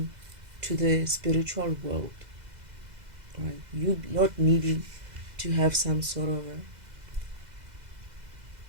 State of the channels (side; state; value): left; late; 2.0 ms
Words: the spiritual world, right? You not needing to have some sort of a